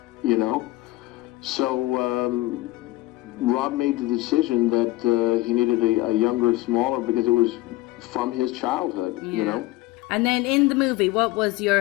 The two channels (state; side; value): quieter; right; 18.7 dB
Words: you know. So Rob made the decision that he needed a younger, smaller, because it was from his childhood, you know. And then in the movie, what was